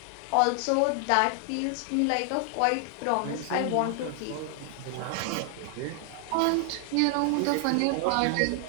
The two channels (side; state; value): both; different; correlation 0.00